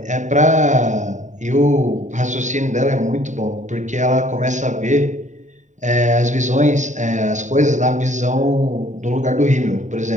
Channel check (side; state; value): left; late; 0.35 ms